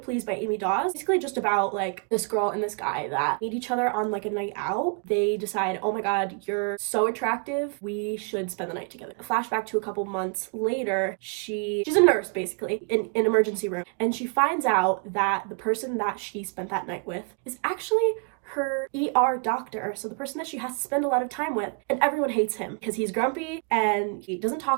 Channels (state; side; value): quieter; left; 35.5 dB